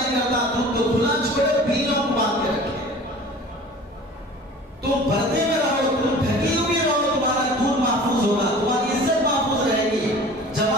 کرتا دودھ کو کھلا چھوڑے، بلیوں کو باندھ کے رکھے. تم پردے میں رہو، تم ڈھکی ہوئی رہو، تمہارا دودھ محفوظ ہوگا، تمہاری عزت محفوظ رہے گی.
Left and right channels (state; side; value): normal; both; correlation 0.43